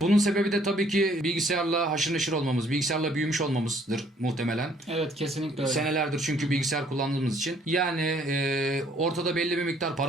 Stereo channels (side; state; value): both; normal; correlation 0.62